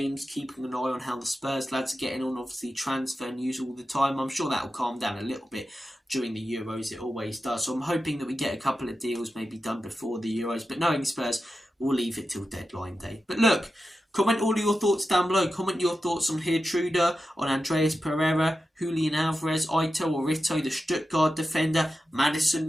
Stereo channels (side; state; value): both; normal; correlation 0.91